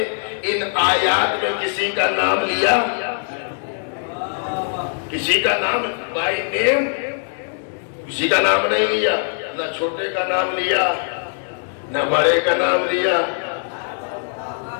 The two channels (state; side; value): silent; right; digital silence